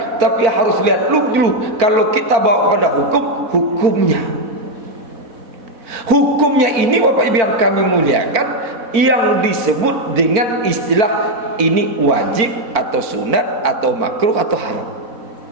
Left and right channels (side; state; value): left; late; 4.5 ms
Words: tapi harus lihat dulu kalau kita bawa pada hukumnya. Hukumnya ini Bapak Ibu yang kami muliakan, yang disebut dengan istilah ini wajib atau sunat atau makruh atau haram.